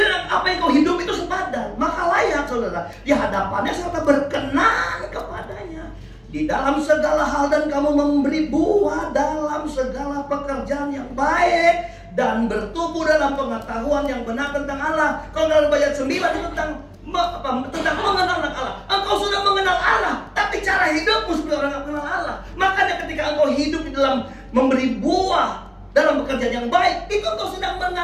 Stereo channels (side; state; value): both; identical; correlation 1.00